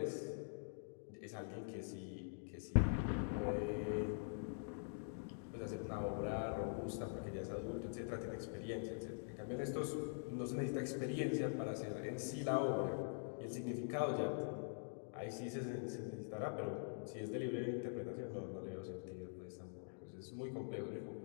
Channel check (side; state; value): right; silent; digital silence